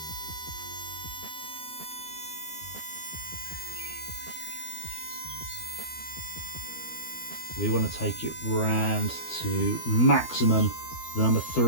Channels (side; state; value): right; late; 12 ms